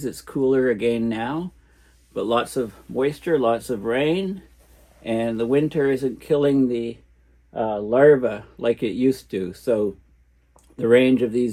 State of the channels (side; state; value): both; identical; correlation 1.00